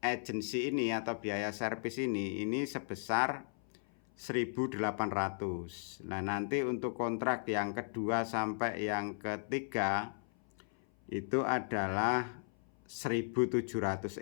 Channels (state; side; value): silent; right; 54 dB below the other